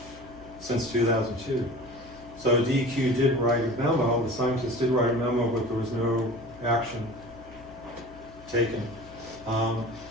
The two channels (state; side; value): noise; left; hum, 20 dB below the sound